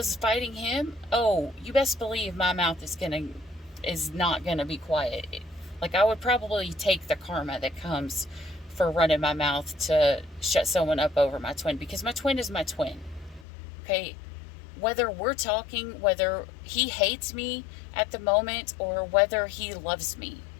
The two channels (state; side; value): drops out; right; at 13.5 s